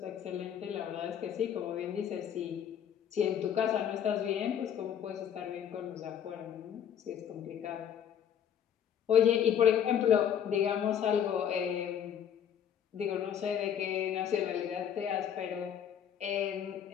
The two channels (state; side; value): quieter; right; 9.0 dB